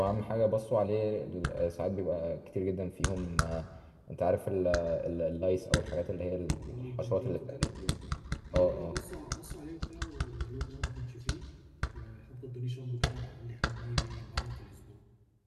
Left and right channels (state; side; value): identical; both; correlation 1.00